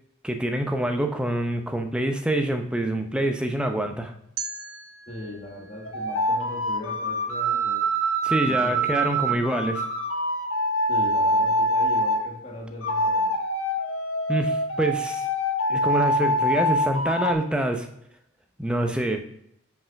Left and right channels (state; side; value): normal; both; correlation 0.29